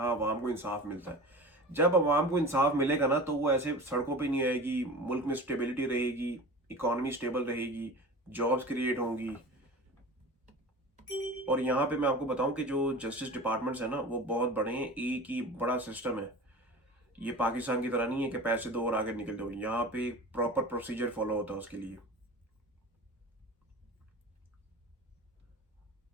अवाम को इंसाफ मिलता है। जब अवाम को इंसाफ मिलेगा ना, तो वो ऐसे सड़कों पे नहीं आएगी, मुल्क में स्टेबिलिटी रहेगी, इकोनॉमी स्टेबल रहेगी, जॉब्स क्रिएट होंगी। और यहाँ पे मैं आपको बताऊं कि जो जस्टिस डिपार्टमेंट्स है ना, वो बहुत बड़े हैं, एक ही बड़ा सिस्टम है। ये पाकिस्तान की तरह नहीं है कि पैसे दो और आगे निकल दो। यहाँ पे प्रॉपर प्रोसीजर फॉलो होता है उसके लिए।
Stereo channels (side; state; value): both; normal; correlation 0.35